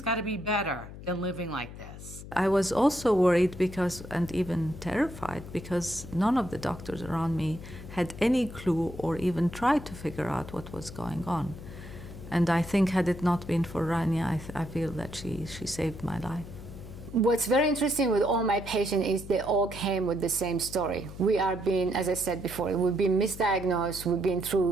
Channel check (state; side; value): noise; left; hum, 13 dB below the sound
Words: got to be better than living like this. I was also worried because, and even terrified, because none of the doctors around me had any clue or even tried to figure out what was going on. And I think had it not been for Rania, I feel that she saved my life. What's very interesting with all my patients is they all came with the same story. We are being, as I said before, we've been misdiagnosed, we've been